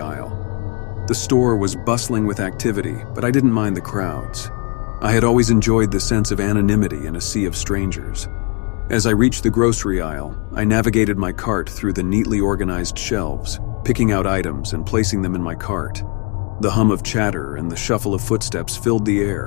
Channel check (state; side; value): quieter; right; 33.2 dB